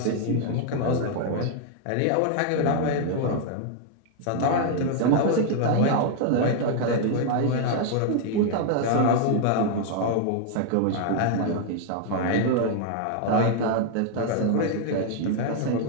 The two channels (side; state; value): both; different; correlation 0.00